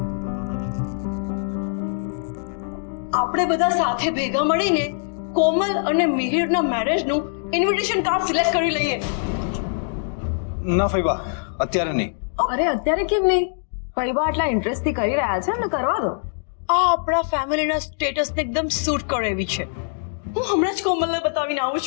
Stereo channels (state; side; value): silent; right; digital silence